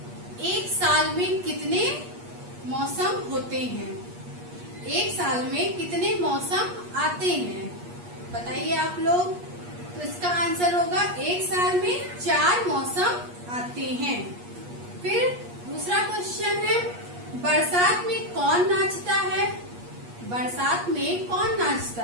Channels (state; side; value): late; left; 8.4 ms